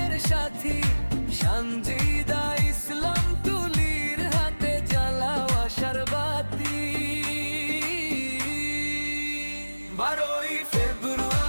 সাথী সানজিদা ইসলাম তুলির হাতে জ্বালাও আশার বাতি। 12ই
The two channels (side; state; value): both; inverted; correlation -1.00